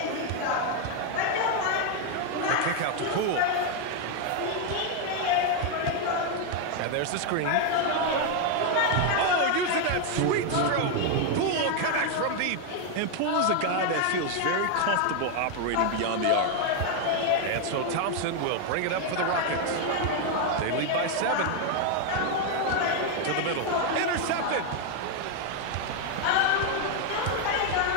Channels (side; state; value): both; different; correlation 0.01